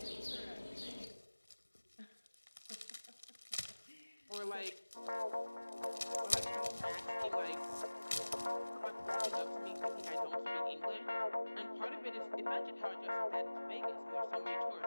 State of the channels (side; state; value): both; inverted; correlation -1.00